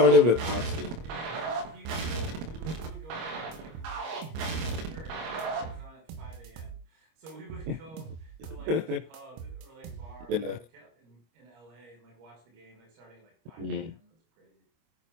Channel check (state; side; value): late; left; 25 ms